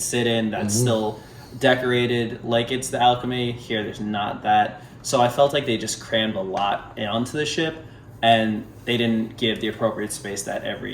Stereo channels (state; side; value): identical; both; correlation 1.00